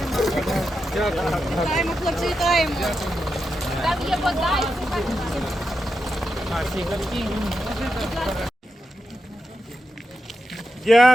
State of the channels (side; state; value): both; normal; correlation 0.88